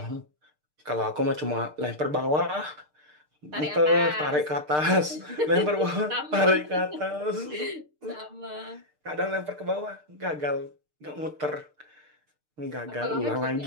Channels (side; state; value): left; late; 6.6 ms